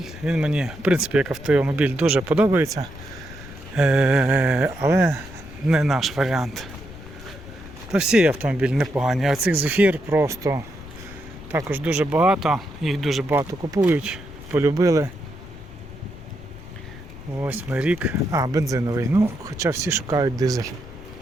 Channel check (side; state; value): left; noise; rumble, 16 dB below the sound